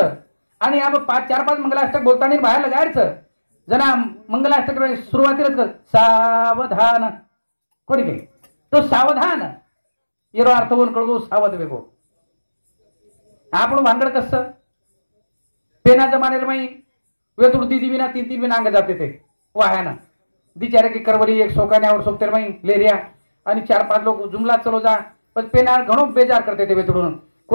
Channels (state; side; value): inverted; both; correlation -1.00